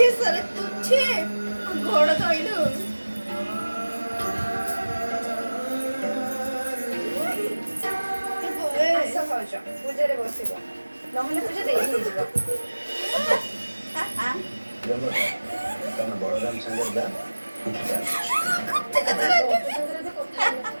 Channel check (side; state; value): both; inverted; correlation -1.00